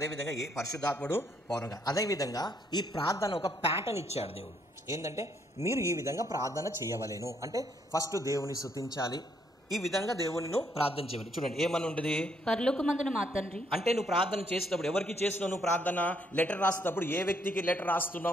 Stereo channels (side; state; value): both; normal; correlation 0.71